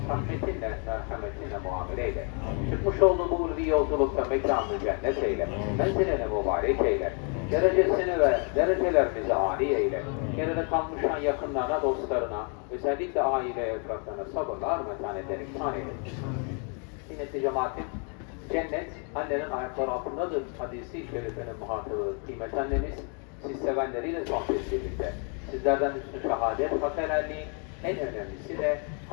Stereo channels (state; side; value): quieter; right; 39.4 dB